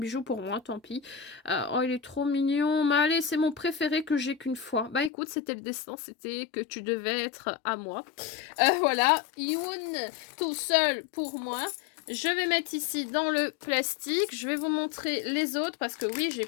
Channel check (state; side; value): drops out; right; at 5.1 s